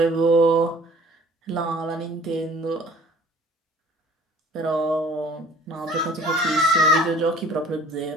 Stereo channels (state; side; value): normal; both; correlation 0.51